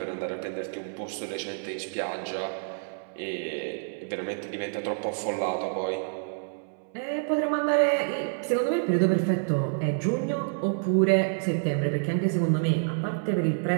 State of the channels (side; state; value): left; silent; 59 dB below the other